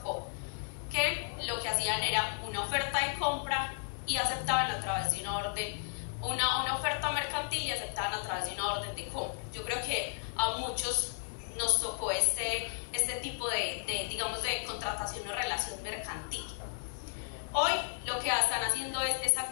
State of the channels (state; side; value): silent; right; digital silence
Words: que lo que hacían era una oferta de compra y aceptaban a través de una orden, una oferta mercantil y aceptaban a través de una orden de compra. Yo creo que a muchos nos tocó este tipo digamos, de contratación o relación mercantil. Hoy lo que están haciendo es